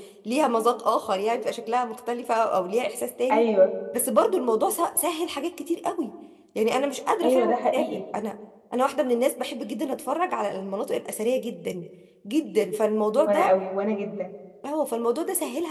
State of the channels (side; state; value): both; identical; correlation 1.00